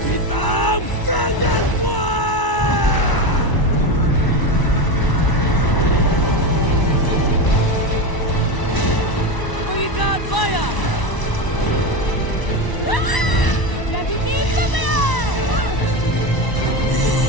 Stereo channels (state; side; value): late; right; 1.0 ms